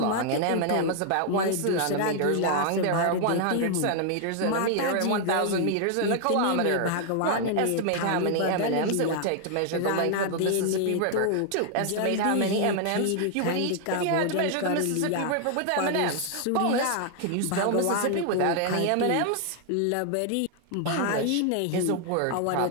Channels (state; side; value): different; both; correlation 0.00